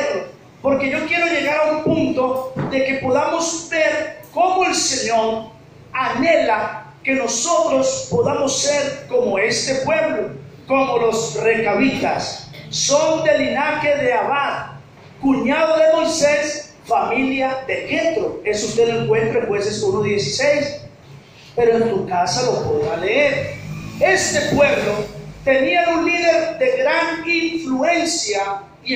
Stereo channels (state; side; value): identical; both; correlation 1.00